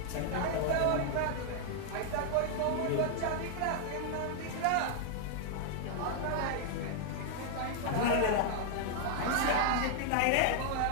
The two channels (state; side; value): different; both; correlation 0.00